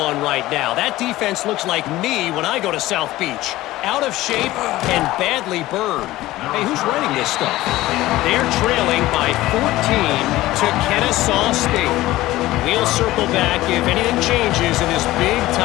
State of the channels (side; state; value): right; quieter; 16.9 dB